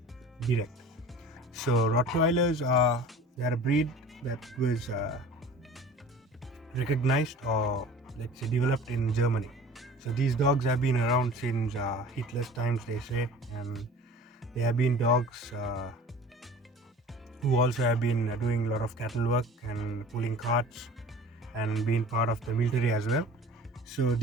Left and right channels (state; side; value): normal; both; correlation 0.42